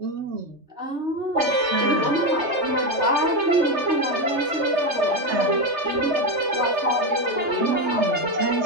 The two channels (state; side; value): late; left; 3.3 ms